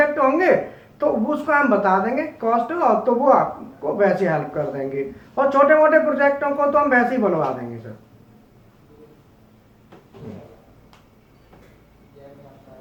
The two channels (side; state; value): both; identical; correlation 1.00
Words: होंगे तो उसको हम बता देंगे कॉस्ट, और तो वो आपको वैसे हेल्प कर देंगे। और छोटे मोटे प्रोजेक्टों को तो हम वैसे ही बनवा देंगे सर।